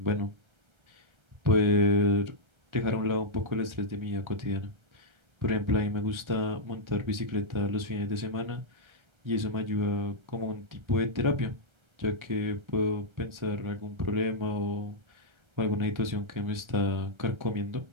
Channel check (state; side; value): late; left; 1.3 ms